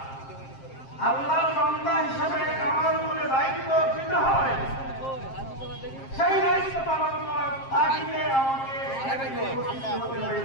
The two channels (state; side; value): late; right; 7.5 ms